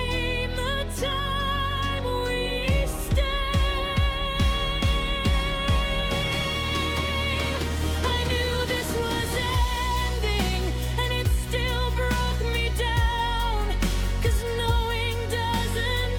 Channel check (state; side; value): identical; both; correlation 1.00